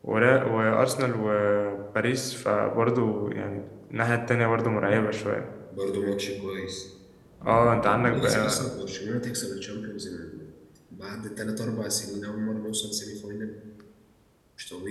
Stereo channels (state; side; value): identical; both; correlation 1.00